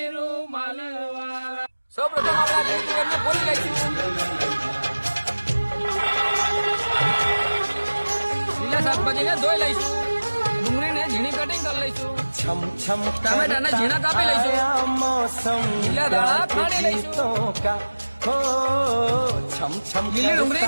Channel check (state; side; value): inverted; both; correlation -1.00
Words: રૂમાલ વાળા. સૌ પ્રથમ આપણે આ લીલી તુવેરને ફોલી લઈશું. લીલા શાકભાજીને ધોઈ લઈશું. ડુંગળીને ઝીણી કટિંગ કરી લઈશું. ટામેટાને ઝીણા કાપી લઈશું. લીલા દાણા ખાંડી લઈશું. લીલી